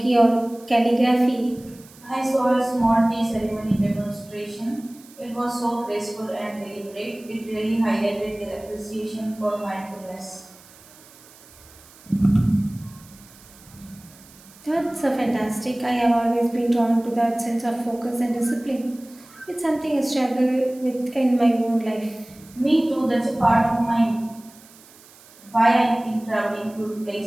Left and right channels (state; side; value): noise; right; hiss, 24 dB below the sound